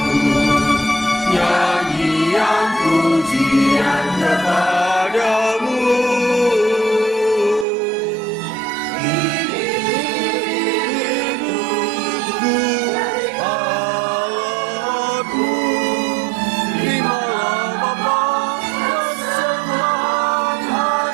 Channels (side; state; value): left; drops out; at 7.7 s